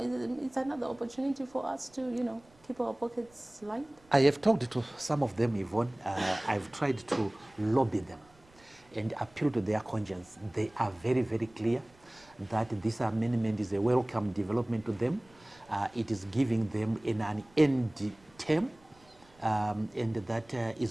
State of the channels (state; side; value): noise; right; rumble, 29 dB below the sound